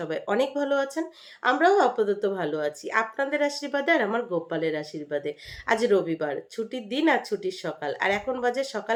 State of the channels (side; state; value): both; identical; correlation 1.00